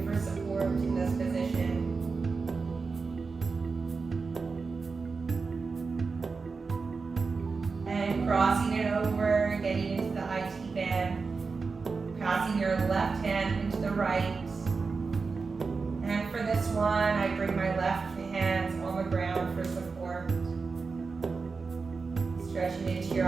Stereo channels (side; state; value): left; quieter; 4.6 dB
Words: for support in this position. And crossing it over, getting into the IT band. Passing your left hand into the right. And for this one, I bring my left hands on the ground for support. Stretching into your